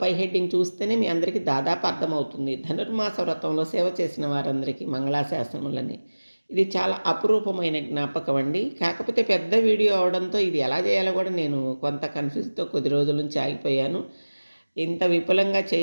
పై హెడ్డింగ్ చూస్తేనే మీ అందరికీ దాదాపు అర్థమవుతుంది. ధనుర్మాస వ్రతంలో సేవ చేసిన వారందరికీ మంగళాశాసనములని. ఇది చాలా అపురూపమైన జ్ఞాపకం అండి. కాకపోతే పెద్ద వీడియో అవడంతో ఇది ఎలా చేయాలో కూడా నేను కొంత కన్ఫ్యూజ్తో కొద్ది రోజుల నుంచి ఆగిపోయాను. ఇంత విపులంగా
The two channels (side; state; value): both; inverted; correlation -1.00